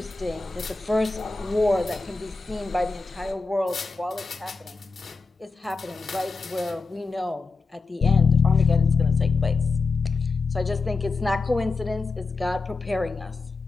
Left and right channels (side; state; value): right; quieter; 4.1 dB